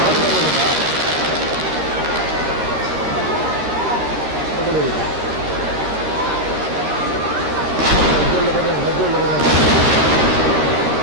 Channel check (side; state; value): left; late; 13 ms